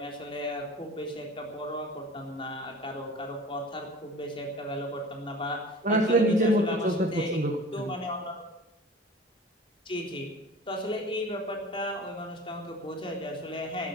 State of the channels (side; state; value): both; normal; correlation 0.40